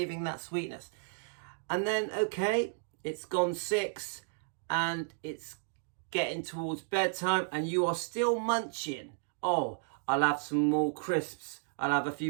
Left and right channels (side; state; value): left; silent; digital silence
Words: that sweetness. And then, okay, it's gone 6 and it's getting towards bedtime and you are still munching. Oh, I'll have some more crisps. I'll have a